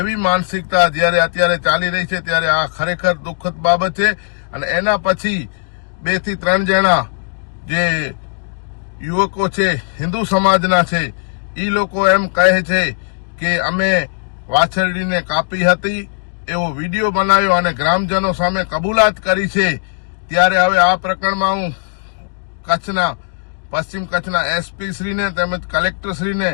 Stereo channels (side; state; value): right; silent; digital silence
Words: मानसिकता ज्यारे अत्यारे चाली रही छे, त्यारे आ खरेखर दुखद बाबत छे। अने एना पछी 2 થી 3 जणा जे युवको छे हिंदू समाजना छे, ई लोको एम कहे छे के अमे वाछरडीने कापी हती एवो विडियो बनाव्यो अने ग्रामजनो सामे कबूलात करी छे। त्यारे हवे आ प्रकरणमां हुं कच्छना पश्चिम कच्छना एसपी श्रीने तेमज कलेक्टर श्रीने